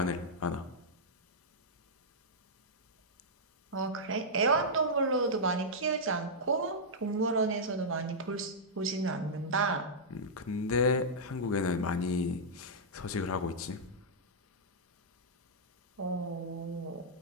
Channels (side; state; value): both; normal; correlation -0.09